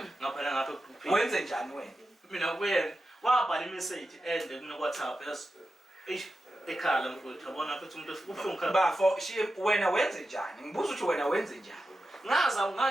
ngaphela ngapha egroupini Wenze njani wena? mina kuyena wabhala imeseji ende kuno-WhatsApp ekhala mfowethu yabona futhi umuntu ubuhlungu khala Bafo wena wenze njani? Ngibuza ukuthi wena wenze njani?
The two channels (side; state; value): both; normal; correlation 0.91